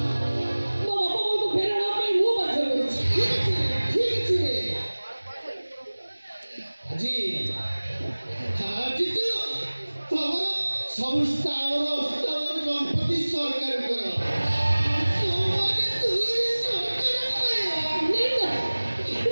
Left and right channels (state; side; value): inverted; both; correlation -1.00